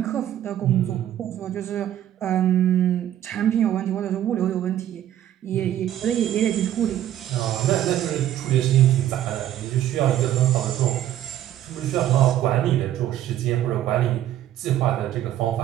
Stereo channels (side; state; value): left; quieter; 12.0 dB